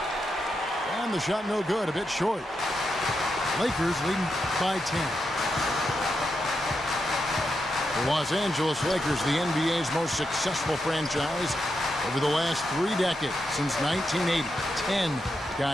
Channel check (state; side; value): normal; both; correlation 0.85